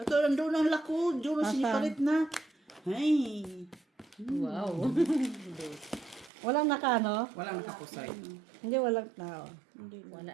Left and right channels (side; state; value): left; drops out; at 6.3 s